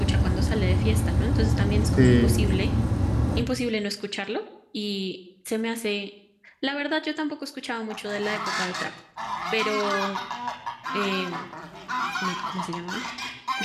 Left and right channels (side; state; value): both; identical; correlation 1.00